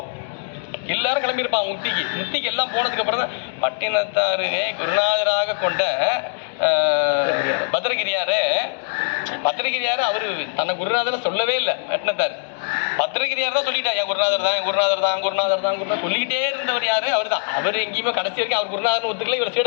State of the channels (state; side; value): silent; right; digital silence